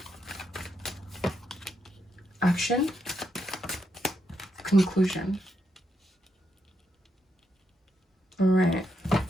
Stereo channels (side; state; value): both; normal; correlation 0.81